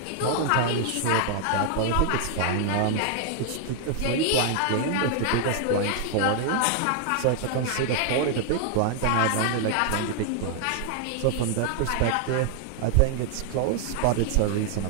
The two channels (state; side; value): different; both; correlation 0.00